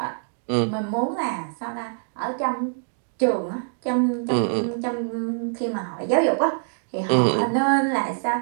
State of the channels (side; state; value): left; silent; 62 dB below the other